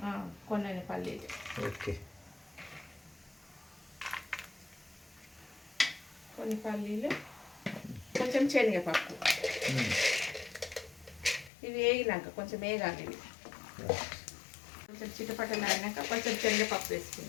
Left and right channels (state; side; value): drops out; right; at 11.5 s